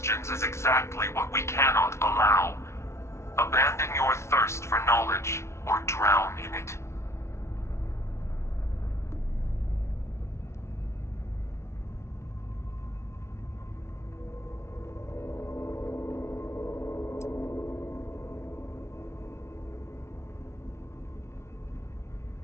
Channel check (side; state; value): right; late; 0.13 ms